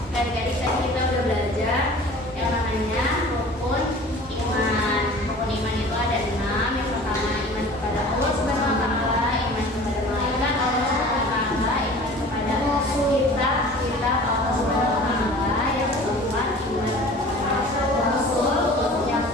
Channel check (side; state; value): both; normal; correlation 0.43